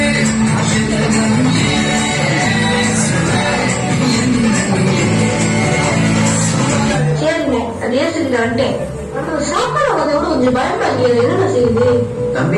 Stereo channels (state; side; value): identical; both; correlation 1.00